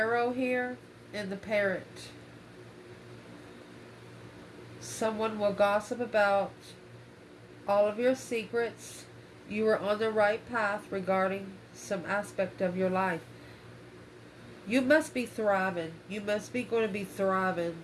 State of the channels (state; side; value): identical; both; correlation 1.00